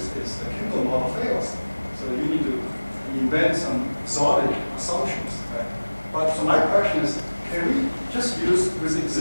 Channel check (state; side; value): inverted; both; correlation -1.00